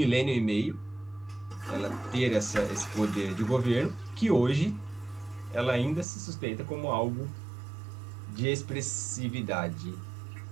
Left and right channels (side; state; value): left; drops out; at 6.1 s